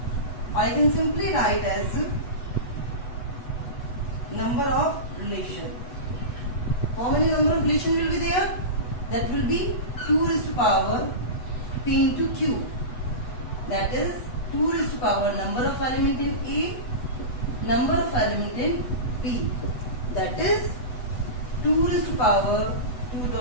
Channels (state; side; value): late; right; 8.1 ms